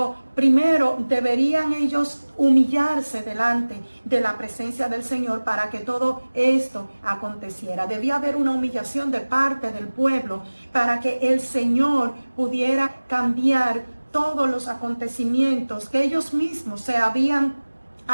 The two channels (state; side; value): inverted; both; correlation -1.00